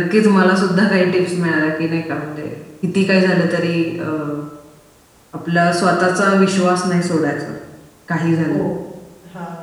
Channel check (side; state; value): both; identical; correlation 1.00